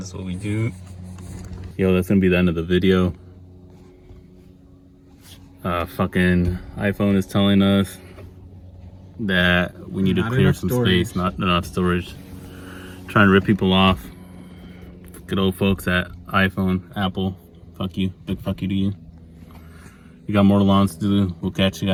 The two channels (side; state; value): both; identical; correlation 1.00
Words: This is what we do. Yo, that's gonna be the end of the video. Fucking iPhone is telling us that we need to clear some space, not enough storage. Trying to rip people off. Good old folks at iPhone, Apple. Fuck you. Big fuck you to you. We got more lawns to do. We'll catch you